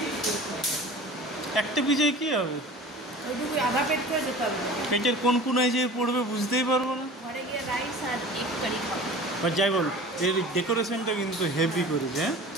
একটা পিৎজায় কী হবে? ওইটুকু আধা পেট করে যেতে হবে। পেটের কোন কোনায় যে পড়বে বুঝতেই পারবো না। ঘরে গিয়ে রাইস আর এগ কারি খাবো। আর যাই বল, এর ডেকোরেশনটা কিন্তু হেভি করেছে। হ্যাঁ,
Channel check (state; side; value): normal; both; correlation 0.39